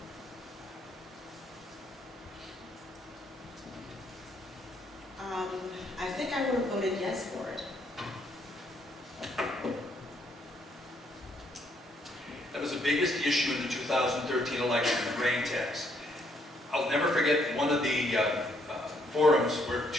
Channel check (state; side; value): normal; both; correlation 0.70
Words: I think I would have voted yes for it. That was the biggest issue in the 2013 election, the grain tax. I'll never forget one of the forums where